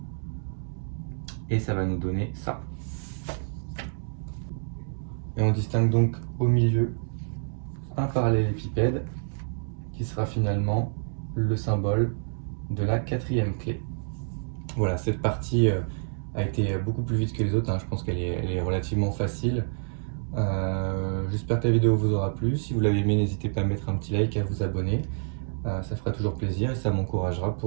et ça va nous donner ça. Et on distingue donc au milieu un parallélépipède qui sera finalement le symbole de la 4e clé. Voilà, cette partie a été beaucoup plus vite que les autres, hein. Je pense qu'elle est relativement facile. J'espère que la vidéo vous aura plu. Si vous l'avez aimé, n'hésitez pas à mettre un petit like et à vous abonner. Ça fera toujours plaisir et ça m'encouragera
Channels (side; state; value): left; silent; digital silence